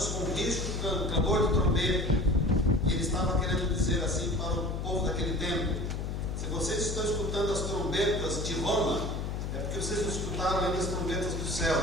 com rígido clamor de trombeta. E ele estava querendo dizer assim para o povo daquele tempo: se vocês estão escutando as trombetas de Roma, é porque vocês não escutaram ainda as trombetas dos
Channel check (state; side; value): noise; left; hum, 3 dB below the sound